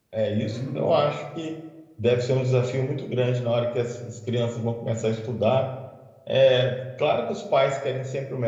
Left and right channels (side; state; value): both; identical; correlation 1.00